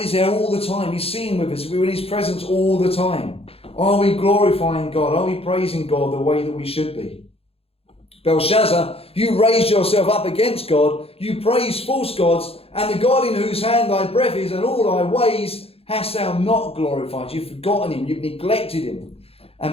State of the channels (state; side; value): late; right; 0.28 ms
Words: there all the time. He's seen with us. We're in his presence all the time. Are we glorifying God? Are we praising God the way that we should be? Belshazzar, you raised yourself up against God. You praise false gods, and the God in whose hand thy breath is and all thy ways hast thou not glorified. You've forgotten him. You've neglected him.